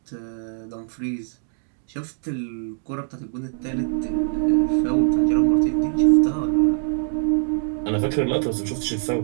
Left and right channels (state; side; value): silent; left; digital silence